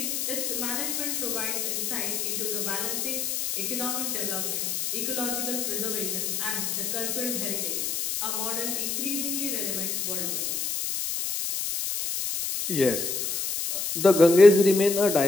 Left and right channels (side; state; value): left; noise; hiss, 2 dB below the sound